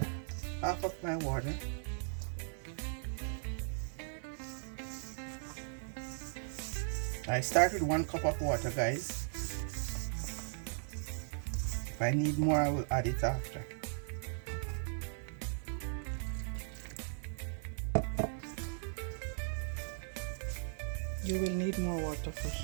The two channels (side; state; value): left; silent; 53 dB below the other